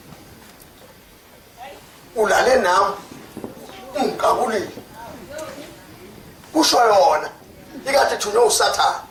ulale nami ungikabulile kusho yona ikade thunywe usathana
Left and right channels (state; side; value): identical; both; correlation 1.00